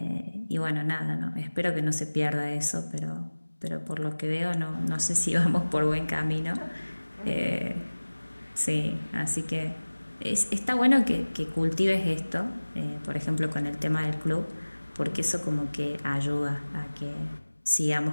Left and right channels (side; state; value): both; inverted; correlation -1.00